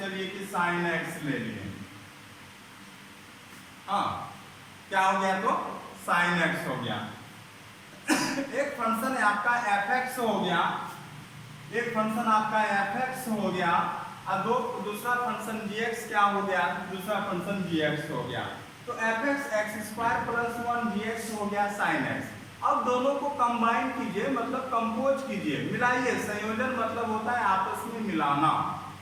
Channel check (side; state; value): both; identical; correlation 1.00